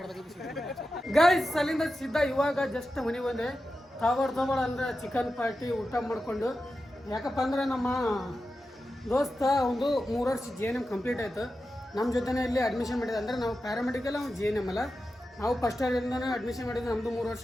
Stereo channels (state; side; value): normal; both; correlation 0.91